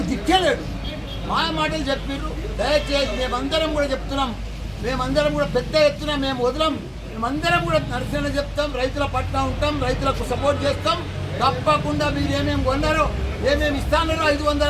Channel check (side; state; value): both; identical; correlation 1.00